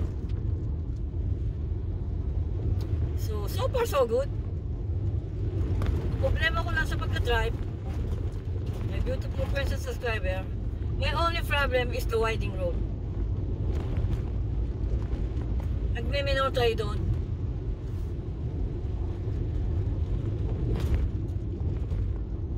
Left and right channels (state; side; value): identical; both; correlation 1.00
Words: So far so good. Problema ko lang sa pagka-drive, my beautiful friends and subscriber, my only problem is the winding road. Nagme-minor tayo doon.